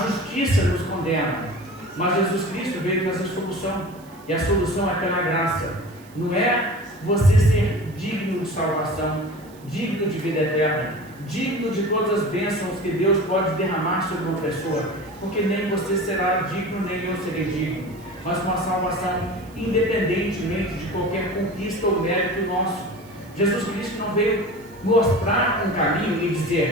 nos condena, mas Jesus Cristo veio trazer solução, e a solução é pela graça. Não é você ser digno de salvação, digno de vida eterna, digno de todas as bênçãos que Deus pode derramar sobre uma pessoa, porque nem você será digno, nem eu serei digno, mas uma salvação independentemente de qualquer conquista ou mérito nosso. Jesus Cristo não veio mostrar um caminho e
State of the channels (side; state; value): right; noise; hiss, 26 dB below the sound